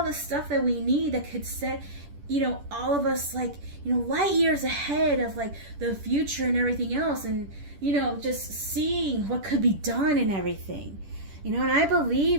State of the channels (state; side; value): late; left; 10 ms